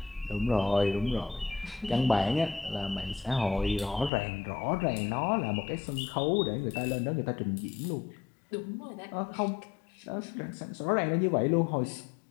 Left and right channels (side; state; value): right; drops out; at 4.1 s